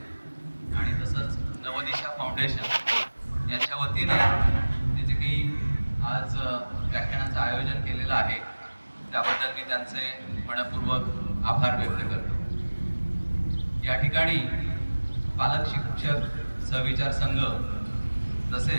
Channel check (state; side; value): inverted; both; correlation -1.00